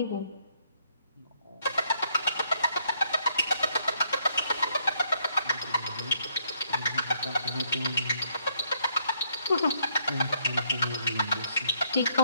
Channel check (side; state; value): both; inverted; correlation -0.70